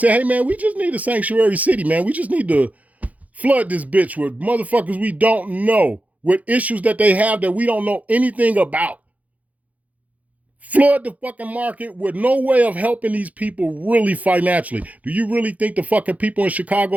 hey man, we just need a sanctuary city, man. We just need to flood this bitch with motherfuckers we don't know, with issues that they have that we don't know anything about. Flood the fucking market with no way of helping these people really financially. Do you really think the fucking people in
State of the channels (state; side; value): late; left; 0.073 ms